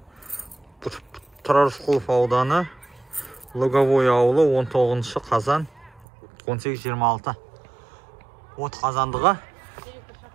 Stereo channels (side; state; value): left; drops out; at 6.1 s